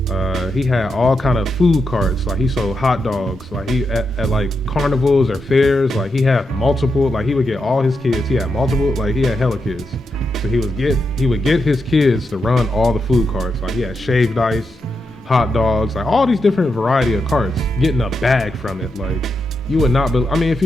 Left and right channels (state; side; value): normal; both; correlation 0.85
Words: He had all kind of food carts. Like, he sold hot dogs. Like, he at like carnivals or fairs, like, he had multiple, like, he would get all his kids. He had multiple, like, he had hella kids. So he would get his kids to run all the food carts. Like, he had shaved ice, hot dogs, like, all these different variety of carts, getting a bag from it. Like, you would not be, I mean, if